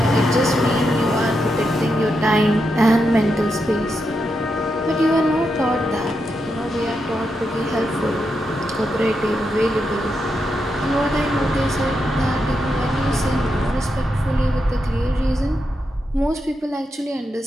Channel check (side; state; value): both; normal; correlation 0.85